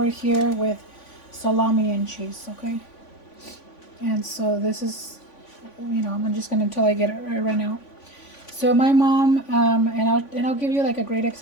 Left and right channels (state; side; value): late; right; 3.5 ms